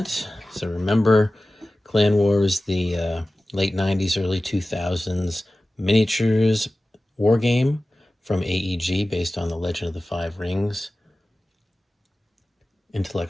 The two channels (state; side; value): normal; both; correlation 0.96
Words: So remember, Clan War is the late 90s, early 2000s miniatures war game from AEG based on the Legend of the Five Rings